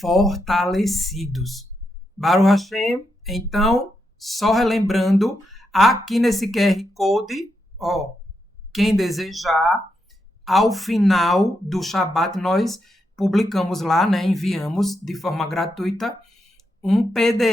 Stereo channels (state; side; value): normal; both; correlation 0.83